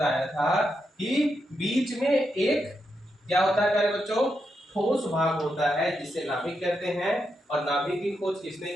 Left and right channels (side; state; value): both; normal; correlation 0.84